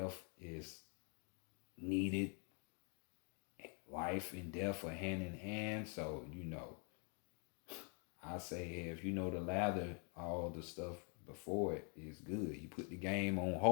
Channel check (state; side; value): quieter; right; 39.0 dB